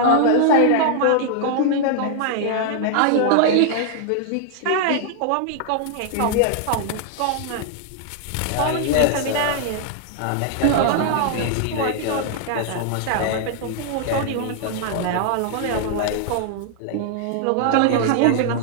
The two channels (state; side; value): different; both; correlation 0.00